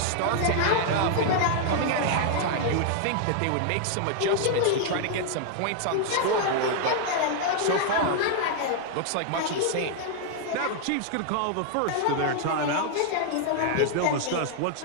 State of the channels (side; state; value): both; different; correlation 0.00